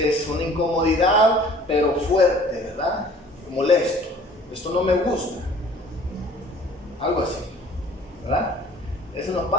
una incomodidad, pero fuerte, ¿verdad? Molesto. Esto no me gusta. Algo así, ¿verdad? Eso nos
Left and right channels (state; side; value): normal; both; correlation 0.50